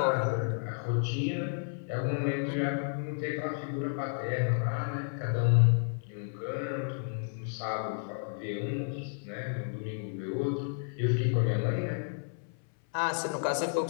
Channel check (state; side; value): silent; right; 57 dB below the other